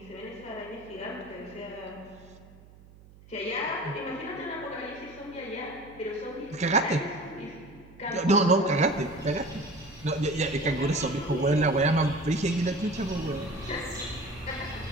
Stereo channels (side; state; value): right; noise; hum, 23 dB below the sound